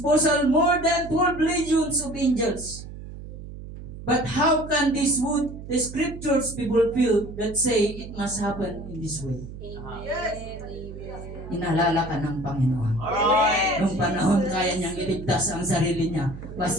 more than 12 legions of angels. But how can the scriptures be fulfilled that say it must happen in this way? Inalala ka ng Panginoon. Nung panahon kaya niyang iligtas ang sarili niya,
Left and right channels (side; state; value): right; noise; hum, 12 dB below the sound